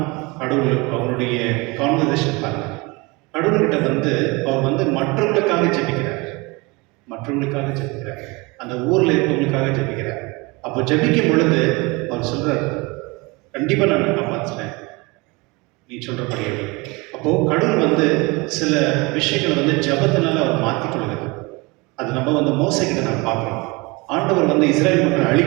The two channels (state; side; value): quieter; left; 25.8 dB